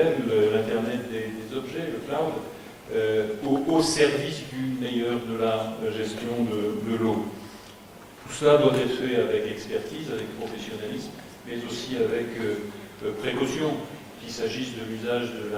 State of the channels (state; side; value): identical; both; correlation 1.00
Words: l'Internet des objets, le cloud, au service du meilleur de la gestion de l'eau. Tout cela doit être fait avec expertise, avec professionnalisme, mais aussi avec précaution, qu'il s'agisse de l'usage